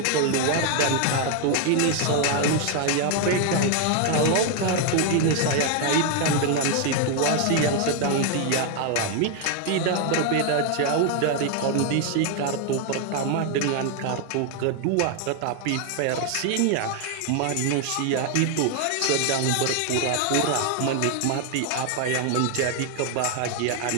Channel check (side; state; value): both; different; correlation 0.00